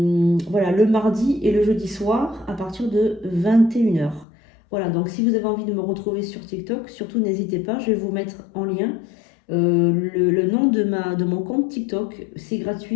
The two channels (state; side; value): drops out; right; at 4.2 s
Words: le mardi et le jeudi soir à partir de 21 h. Voilà, donc si vous avez envie de me retrouver sur TikTok, surtout n'hésitez pas, je vais vous mettre en lien. Le nom de mon compte TikTok, c'est